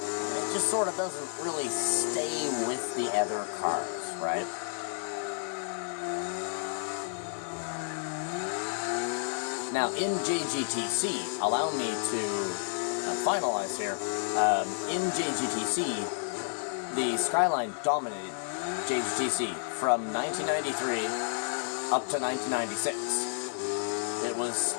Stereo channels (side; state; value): right; silent; 56 dB below the other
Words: just sort of doesn't really stay with the other cars, right? Now, in JGTC, allow me to finalize here, in JGTC, the Skyline dominated JGTC from 1993 up to 1996. It was